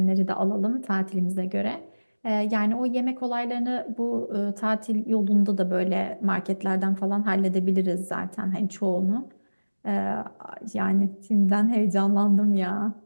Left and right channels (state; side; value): inverted; both; correlation -1.00